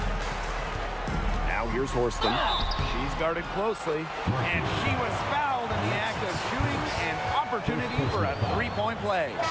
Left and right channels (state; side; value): identical; both; correlation 1.00